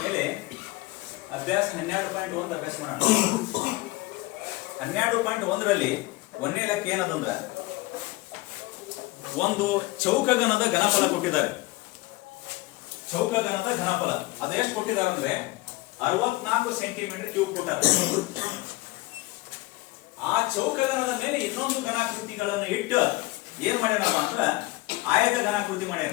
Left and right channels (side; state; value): right; quieter; 21.0 dB